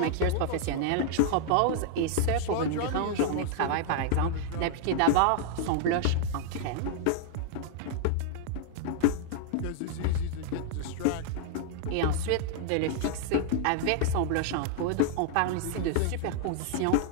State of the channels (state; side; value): different; both; correlation -0.01